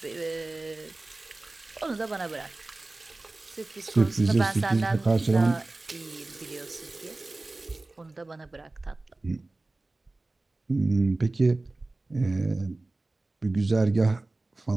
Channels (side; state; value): left; quieter; 3.0 dB